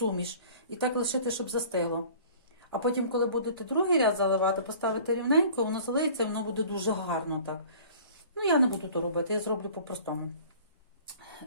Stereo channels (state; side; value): inverted; both; correlation -0.47